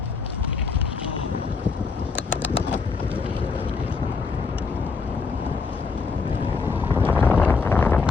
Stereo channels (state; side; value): quieter; right; 4.8 dB